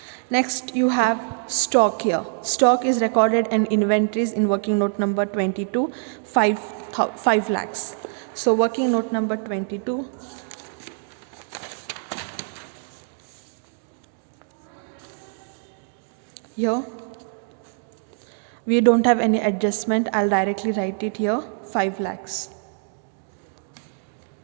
Next you have stock here. Stock is recorded in inventories in working note number 22, 5 lakhs. So working note number 22. Here we don't have any adjustment. I'll directly write it here, 5 lakhs.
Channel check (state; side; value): silent; left; 62 dB below the other